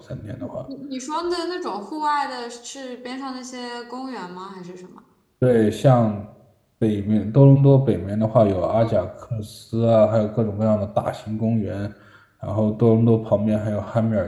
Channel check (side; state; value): both; identical; correlation 1.00